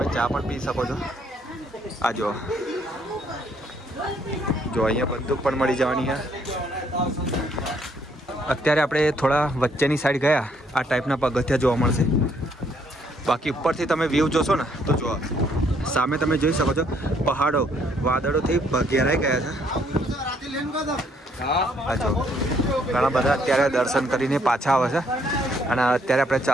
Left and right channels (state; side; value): normal; both; correlation 0.68